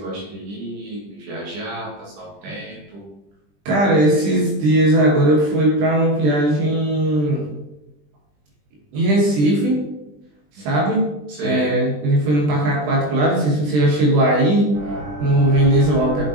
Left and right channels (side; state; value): left; late; 20 ms